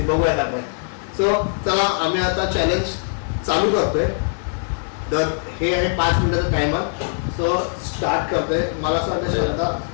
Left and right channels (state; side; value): silent; right; digital silence